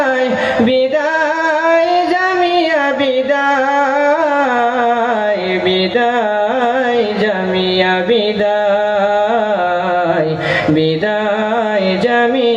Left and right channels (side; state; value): both; identical; correlation 1.00